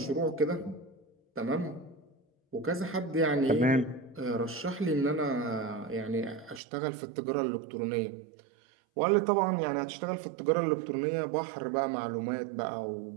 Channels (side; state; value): left; drops out; at 6.6 s